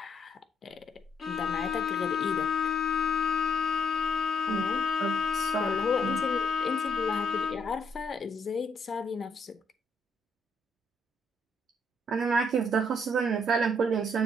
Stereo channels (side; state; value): both; normal; correlation 0.71